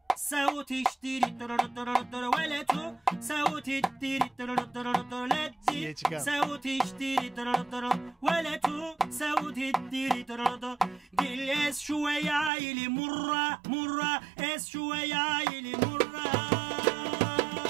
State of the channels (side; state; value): left; drops out; at 12.5 s